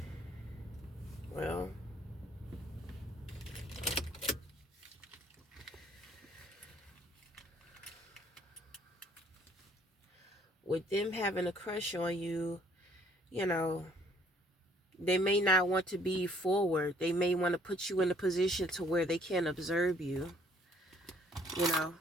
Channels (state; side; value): normal; both; correlation 0.61